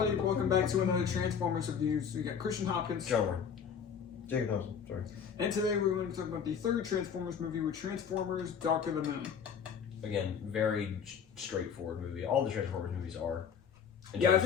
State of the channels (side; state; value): right; quieter; 7.2 dB